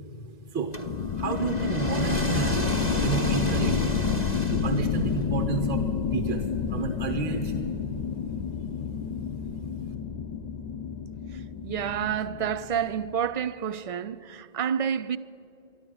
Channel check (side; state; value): right; late; 2.0 ms